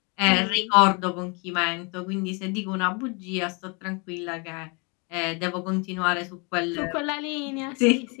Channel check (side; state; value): right; quieter; 31.9 dB